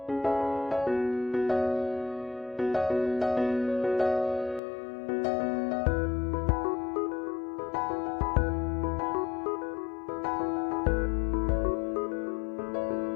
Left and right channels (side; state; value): right; drops out; at 4.6 s